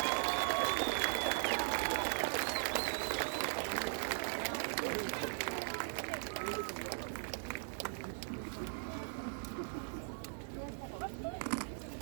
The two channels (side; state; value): left; silent; 52 dB below the other